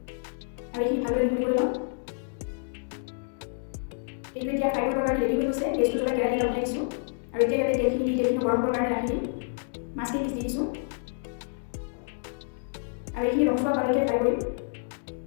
আৰু এইখিনি ভালদৰে মিহলি কৰি ল'ম। এইটো এতিয়া ফ্ৰাই কৰিবৰ কাৰণে ৰেডি হৈ গৈছে। গেছটো জ্বলাই কেৰাহী এটা উঠাই দিছোঁ আৰু এতিয়া ইয়াতে তেলখিনি গৰম কৰিবৰ কাৰণে ৰাখি দিম। মাছখিনি পিচ দি দিছোঁ আৰু এইখিনি ৰঙচুৱা হোৱালৈকে ফ্ৰাই কৰিম।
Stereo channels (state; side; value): silent; right; digital silence